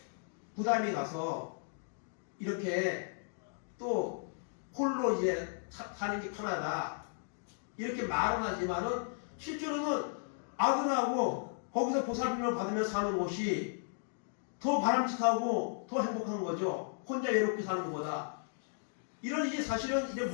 부담이 가서 이렇게 또 홀로 이제 사는 게 편하다. 이렇게 말은 하지만은 실제로는 아들하고 거기서 보살핌을 받으며 사는 것이 더 바람직하고 더 행복한 거죠. 혼자 외롭게 사는 것보다. 이런 이제 사실은 이제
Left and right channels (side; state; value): right; silent; digital silence